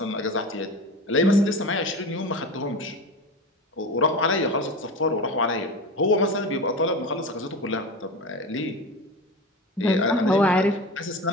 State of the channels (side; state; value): both; normal; correlation 0.28